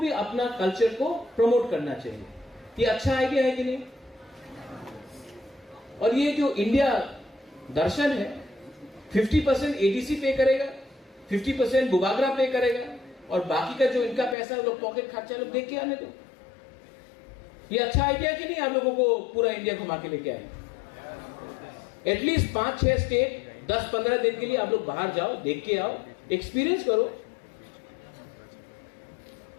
अपना कल्चर को प्रमोट करना चाहिए। ये अच्छा आइडिया है कि नहीं? और ये जो इंडिया दर्शन है, 50% ADC पे करेगा, 50% बुबागरा पे करेगा और बाकी का जो इनका पैसा लोग पॉकेट खर्चा लोग देख के आने दो। ये अच्छा आइडिया कि नहीं? आप लोगों को पूरा इंडिया घुमा के लेके आए, एटलीस्ट 5-6 स्टेट 10-15 दिन के लिए आप लोग बाहर जाओ, देख के आओ, एक्सपीरियंस करो।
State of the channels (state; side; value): drops out; right; at 14.4 s